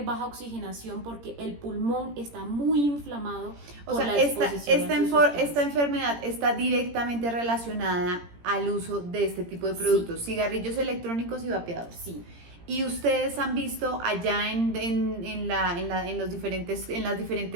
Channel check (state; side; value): late; left; 17 ms